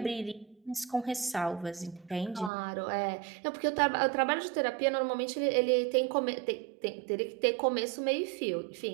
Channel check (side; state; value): left; drops out; at 2.5 s